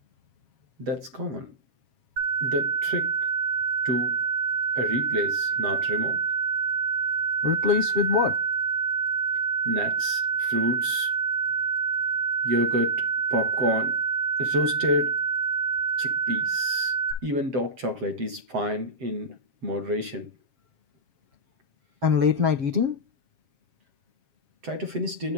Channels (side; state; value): left; late; 7.5 ms